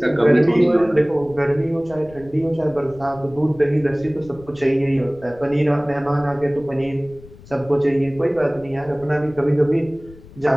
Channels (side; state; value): left; noise; rumble, 21 dB below the sound